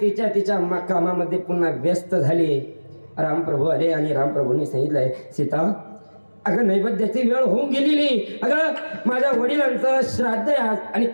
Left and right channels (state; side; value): inverted; both; correlation -1.00